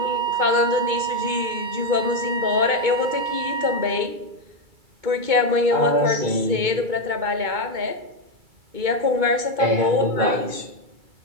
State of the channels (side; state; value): left; late; 2.2 ms